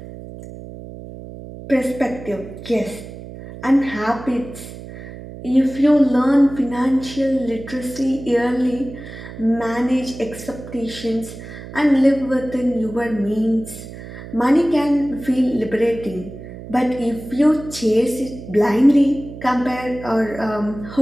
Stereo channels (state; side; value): noise; right; hum, 13 dB below the sound